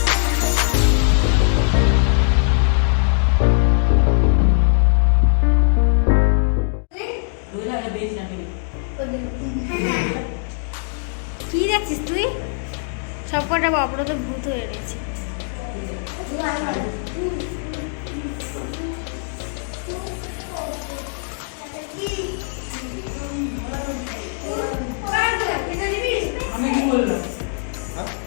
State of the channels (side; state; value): right; silent; digital silence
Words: কি দেখছিস তুই? সব কটা অপরাধ ভূত হয়ে রয়েছে।